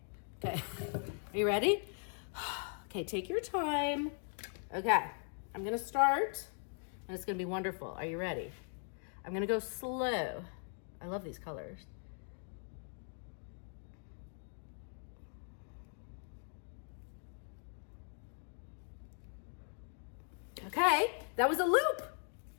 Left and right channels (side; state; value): right; silent; 51 dB below the other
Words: Are you ready? Okay, take your time. Okay, I'm gonna start and it's gonna be wonderful. Are you ready? I'm gonna go slow. I love these colors. Okay, that was a loop.